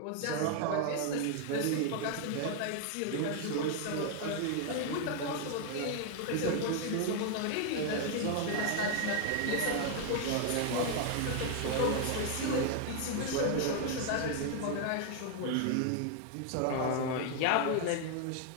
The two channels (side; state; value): both; different; correlation 0.00